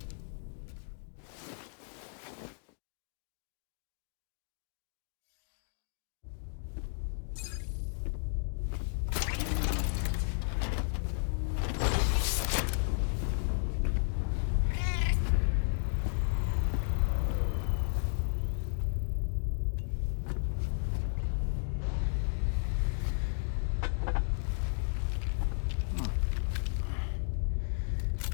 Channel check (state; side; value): silent; right; digital silence